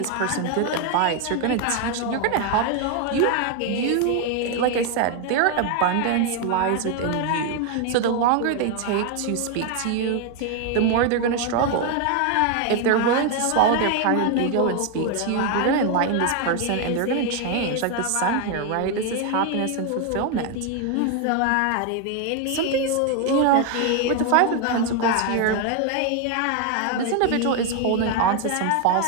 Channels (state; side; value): different; both; correlation 0.01